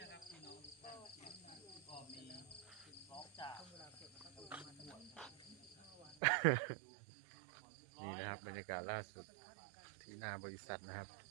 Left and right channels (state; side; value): drops out; left; at 6.2 s